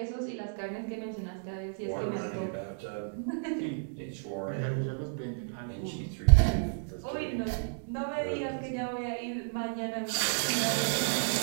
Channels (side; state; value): left; silent; digital silence